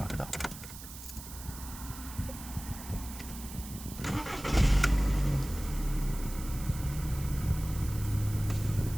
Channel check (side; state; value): right; noise; hiss, 13 dB below the sound